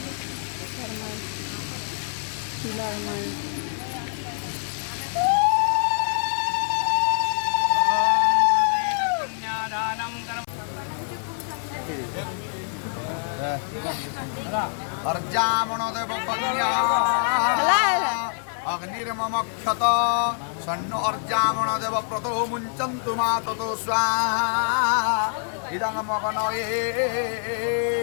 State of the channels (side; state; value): right; silent; 62 dB below the other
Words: अर्जामणदेव कन्या अग्निर्ममक्षत सन्नो अर्जामणदेव प्रतो मुञ्चन्तु मा ततो स्वाहा इदं मगनये